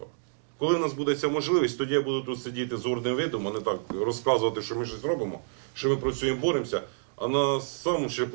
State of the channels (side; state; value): left; silent; digital silence